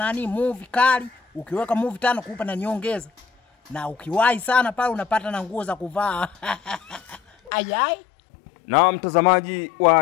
movie kali, ukiweka movie 5 kukupa na nyongeza. Na ukiwahi sana pale unapata na nguo za kuvaa. Ayai. Na mtazamaji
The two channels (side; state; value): right; drops out; at 7.5 s